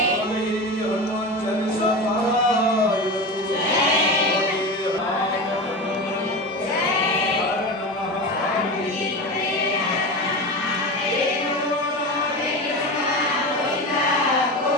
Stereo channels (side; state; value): both; normal; correlation 0.25